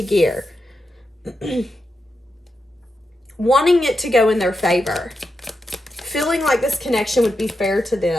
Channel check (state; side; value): normal; both; correlation 0.87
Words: gear. Wanting it to go in their favor. Feeling like this connection would be fair to